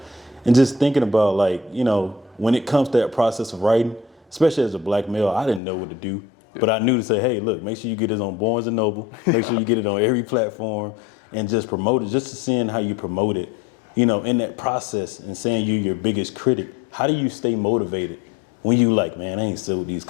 and just thinking about when it comes to that process of writing, especially as a black male, I didn't know what to do, but I knew to say, hey, look, make sure you get it on Barnes and Noble, make sure you get it on every platform, and just promote it. Just to seeing how you promote it, in that process, and saying you're your biggest critic. How do you stay motivated when you like, man, I ain't sold these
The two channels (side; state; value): right; drops out; at 5.6 s